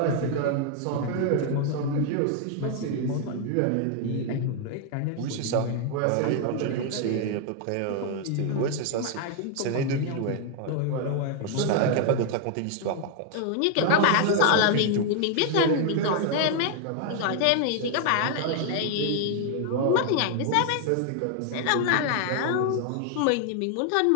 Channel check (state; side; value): different; both; correlation 0.00